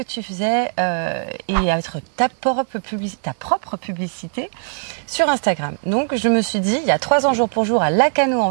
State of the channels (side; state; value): left; silent; digital silence